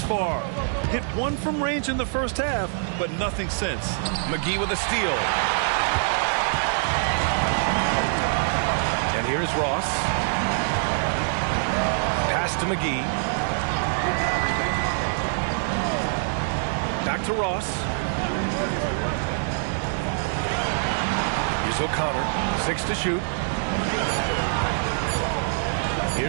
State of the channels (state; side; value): silent; left; 59 dB below the other